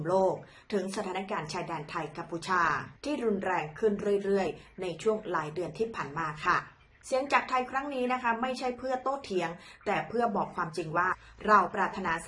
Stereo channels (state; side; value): identical; both; correlation 1.00